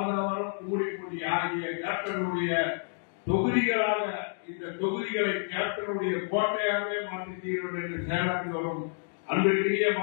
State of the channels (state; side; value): silent; right; digital silence